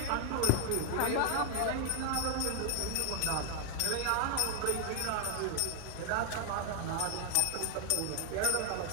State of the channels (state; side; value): different; both; correlation 0.00